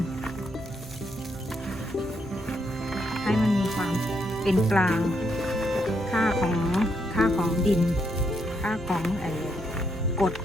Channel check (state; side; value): normal; both; correlation 0.77